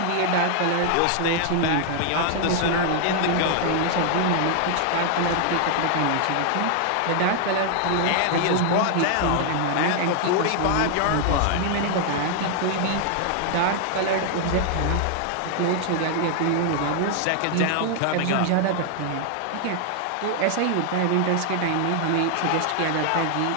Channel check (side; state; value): both; different; correlation 0.00